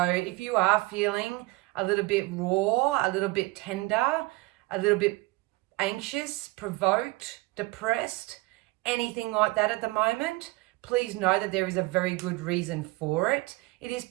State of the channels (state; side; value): quieter; left; 22.5 dB